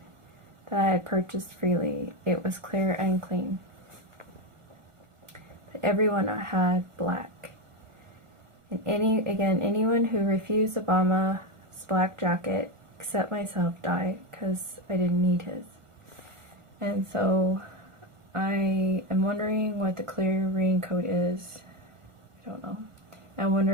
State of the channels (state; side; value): late; left; 1.5 ms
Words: that I had purchased freely. It was clear and clean. But everyone had black. And anyone who refused Obama's black jacket, except myself, died, because I didn't need his. And so I am wondering what the clear raincoat is. I don't know. I'm